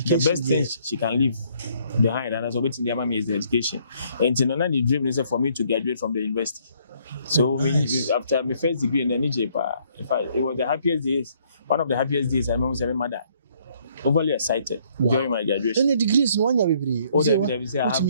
best thing she can leave behind, and that's what the mama is the education. And the dream is for me to graduate from the university. So after my first degree in the NTK, it was the happiest days. One of the happiest days I remember my mother. Overly excited during my graduation. Any degrees in 1 year, baby? Oh, they say I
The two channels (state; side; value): inverted; both; correlation -0.66